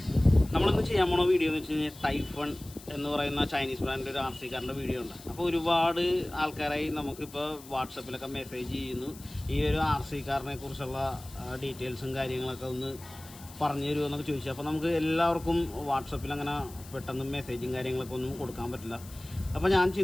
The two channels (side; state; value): left; noise; hiss, 19 dB below the sound